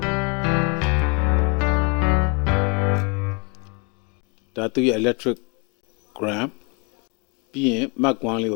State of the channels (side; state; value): right; quieter; 32.4 dB